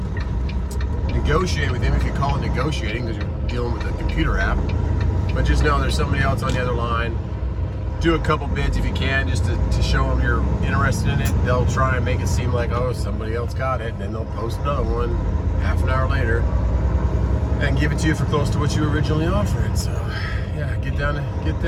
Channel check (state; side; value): identical; both; correlation 1.00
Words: negotiate with him, if you call it negotiating, because you're dealing with a computer app. But just know there's somebody else on the other line. Do a couple bids if you can, just to show them you're interested in it. They'll try and make it seem like, oh, somebody else got it, and then they'll post another one half an hour later and give it to you for close to what you originally offered. So yeah, get